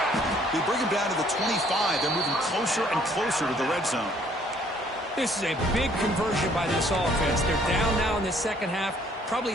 They bring him down to the 25. They're moving closer and closer to the red zone. This is a big conversion by this offense. They're down now in the 2nd half. Probably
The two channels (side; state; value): both; normal; correlation 0.61